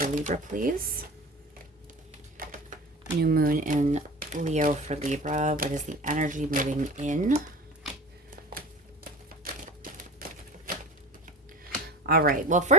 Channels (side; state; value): both; normal; correlation 0.36